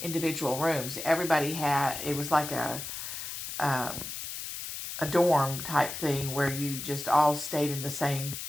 individual rooms. Everybody it was like a dorm type thing where you just all stayed on the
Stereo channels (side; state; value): left; noise; hiss, 7 dB below the sound